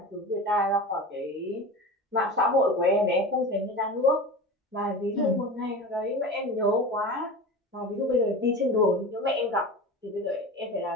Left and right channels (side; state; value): both; normal; correlation 0.31